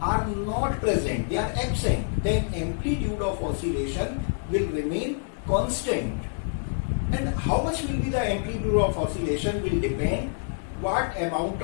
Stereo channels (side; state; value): right; silent; digital silence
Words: are not present, they are absent, then amplitude of oscillation will remain constant. And how much will be the amplitude of oscillation will depend what amount